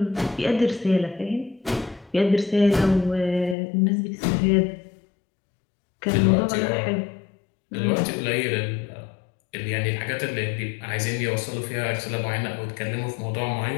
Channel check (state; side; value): drops out; right; at 3.6 s